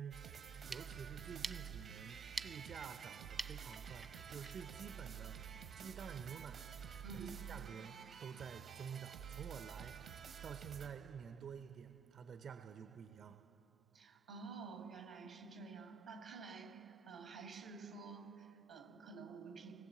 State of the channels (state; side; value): quieter; left; 5.9 dB